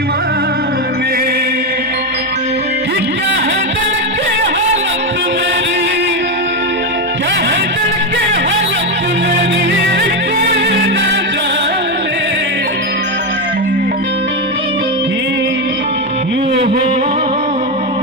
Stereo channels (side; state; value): both; normal; correlation 0.09